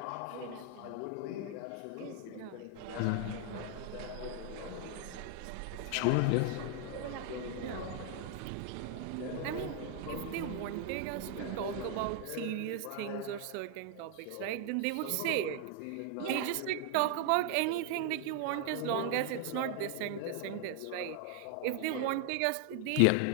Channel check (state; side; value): different; both; correlation 0.00